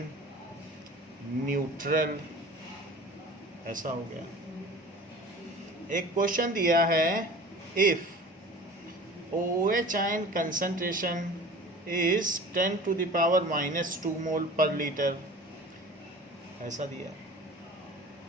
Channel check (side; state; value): both; normal; correlation 0.41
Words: न्यूट्रल, ऐसा हो गया। एक क्वेश्चन दिया है, if OH ion concentration is 10 to the power minus 2 mole per litre, ऐसा दिया।